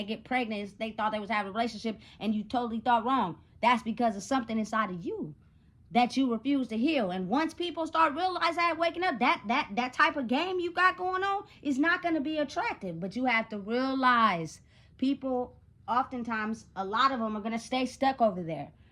get pregnant. They thought they was having a relationship, and you totally thought wrong. That's because of something inside of you that you refuse to heal. And once people start realizing that, waking up, that type of game you got going on is not going to be attractive. But you have to realize people, oftentimes, a lot of them are going to stay stuck over there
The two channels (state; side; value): identical; both; correlation 1.00